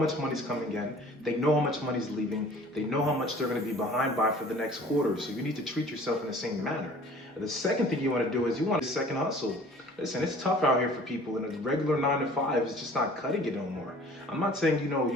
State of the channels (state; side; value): normal; both; correlation 0.49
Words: money's coming in. They know how much money's leaving. They know how much they're going to be behind by for the next quarter. So you need to treat yourself in the same manner. The second thing you want to do is you want a second hustle. Listen, it's tough out here for people, and a regular 9 to 5 is just not cutting it no more. I'm not saying